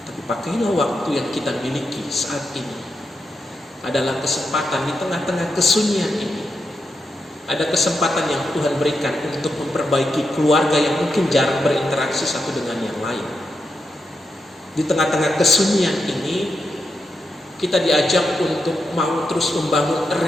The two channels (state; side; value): normal; both; correlation 0.85